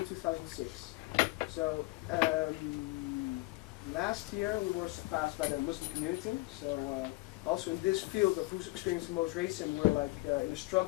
2006. So last year we were surpassed by the Muslim community. So also in this field of who's experiencing the most racism, we're like in a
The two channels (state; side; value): quieter; right; 22.0 dB